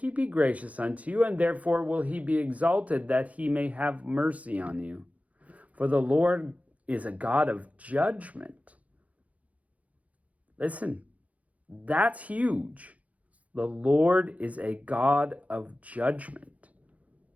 be gracious unto you, and therefore will he be exalted, that he may have mercy on you. For the Lord is a God of judgment. Listen, that's huge. The Lord is a God of judgment.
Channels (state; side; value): late; left; 0.069 ms